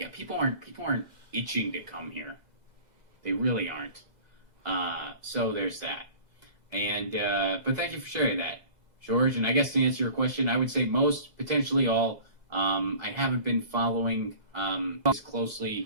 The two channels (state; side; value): late; left; 2.0 ms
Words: yeah, people aren't itching to come here. They really aren't. So there's that. And but thank you for sharing that, George. And I guess to answer your question, I would say most, potentially all. I haven't been following as closely